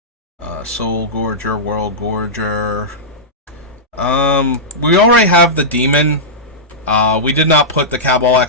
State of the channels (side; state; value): both; normal; correlation -0.13